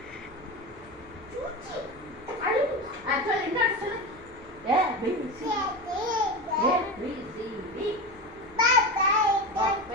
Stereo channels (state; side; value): noise; left; rumble, 25 dB below the sound